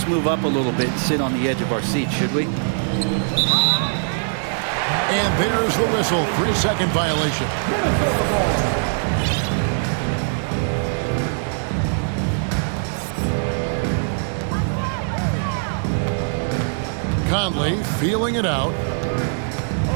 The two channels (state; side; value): silent; left; digital silence